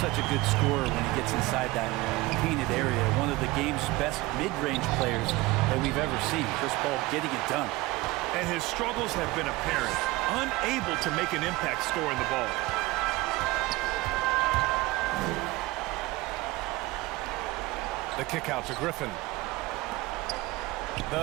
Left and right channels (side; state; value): left; quieter; 20.4 dB